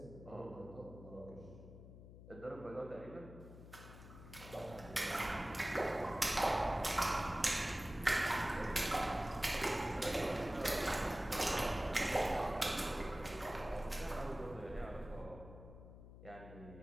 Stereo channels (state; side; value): noise; left; hum, 15 dB below the sound